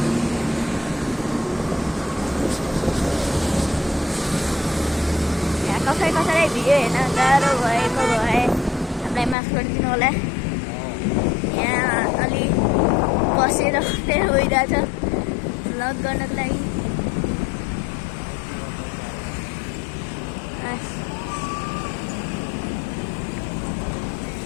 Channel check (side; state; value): right; drops out; at 9.3 s